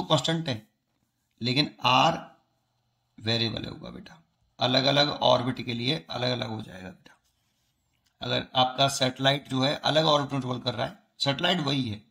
कांस्टेंट है लेकिन आर वेरिएबल होगा बेटा, अलग अलग ऑर्बिट के लिए अलग अलग हो जाएगा बेटा। अगर आपका सैटेलाइट जो है अलग ऑर्बिट ट्रेवल कर रहा है, सैटेलाइट वही है,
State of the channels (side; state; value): both; identical; correlation 1.00